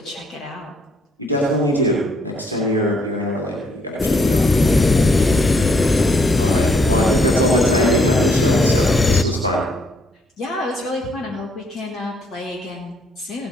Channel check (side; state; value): both; normal; correlation 0.70